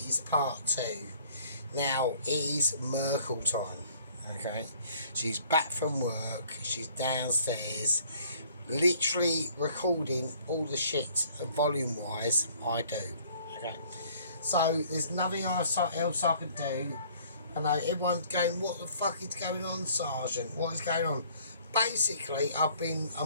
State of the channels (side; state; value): both; inverted; correlation -0.57